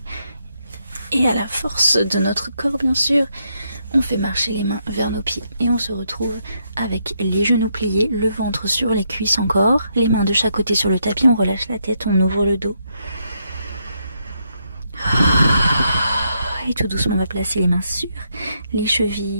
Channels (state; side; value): inverted; both; correlation -0.78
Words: et à la force de notre corps bien sûr, on fait marcher les mains vers nos pieds. Et on se retrouve avec les genoux pliés, le ventre sur les cuisses encore, les mains de chaque côté sur le tapis, on relâche la tête, on ouvre le dos. Et tout doucement, on va placer les mains sur les